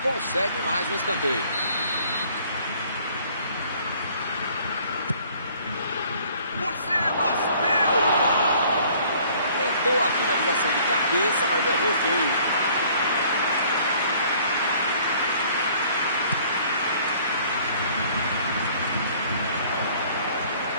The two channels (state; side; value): inverted; both; correlation -0.57